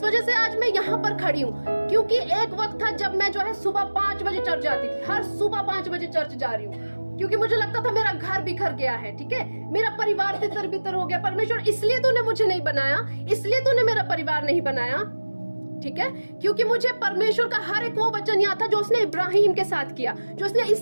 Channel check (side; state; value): both; inverted; correlation -1.00